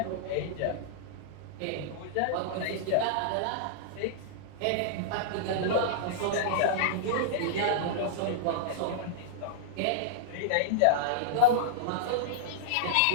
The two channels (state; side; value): different; both; correlation -0.02